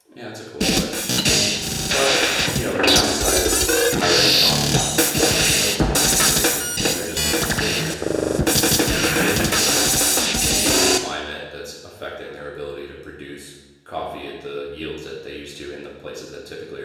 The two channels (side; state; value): both; identical; correlation 1.00